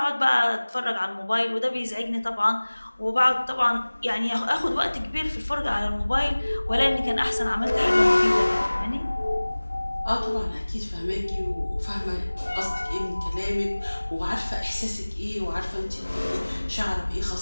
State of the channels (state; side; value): inverted; both; correlation -1.00